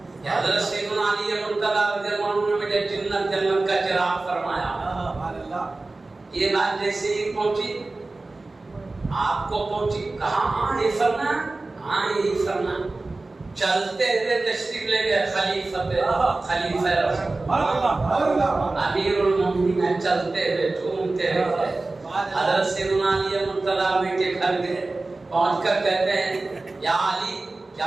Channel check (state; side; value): quieter; left; 3.2 dB